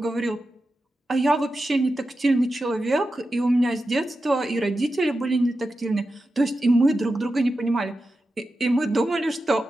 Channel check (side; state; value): both; normal; correlation 0.91